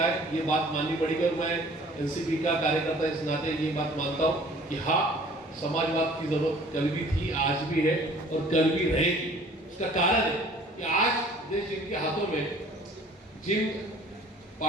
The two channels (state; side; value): normal; both; correlation 0.52